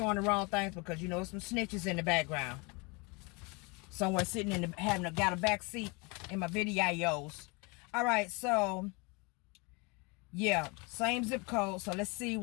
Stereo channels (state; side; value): quieter; right; 28.9 dB